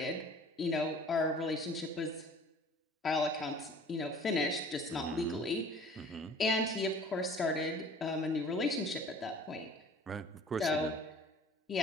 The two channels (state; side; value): normal; both; correlation 0.49